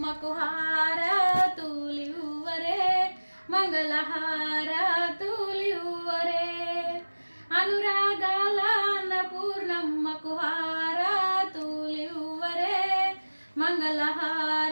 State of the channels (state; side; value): inverted; both; correlation -1.00